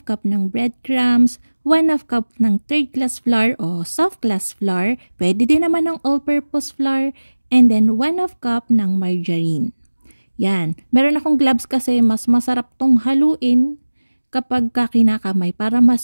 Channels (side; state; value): both; inverted; correlation -1.00